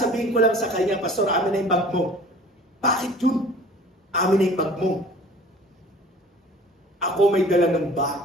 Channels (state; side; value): normal; both; correlation 0.47